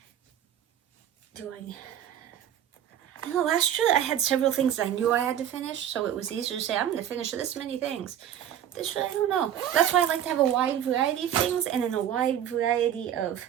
I know last year I had several things I knew I had to finish, so it was easier to say, I'm going to finish this many things. This year, I don't know. That's why I like to have a wide variety of things, and in a wide variety of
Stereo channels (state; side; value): quieter; left; 10.3 dB